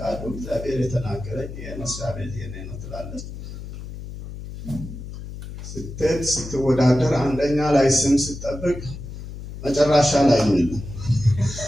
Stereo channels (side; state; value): left; noise; hum, 11 dB below the sound